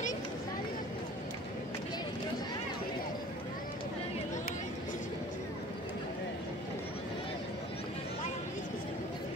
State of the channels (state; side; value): normal; both; correlation 0.46